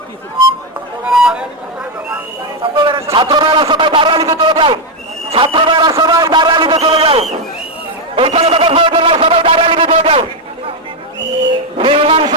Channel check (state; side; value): normal; both; correlation 0.04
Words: ছাত্ররা সবাই দাঁড়ালিতে চলে যায়, ছাত্ররা সবাই দাঁড়ালিতে চলে যায়, এইখানে তাদের প্রয়োজন নাই, সবাই দাঁড়ালিতে চলে যায়। নির্মাণ